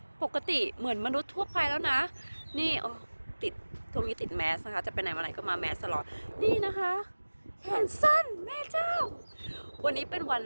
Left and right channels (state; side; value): inverted; both; correlation -1.00